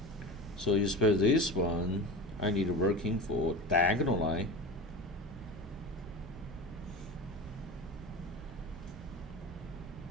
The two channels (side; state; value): both; normal; correlation 0.29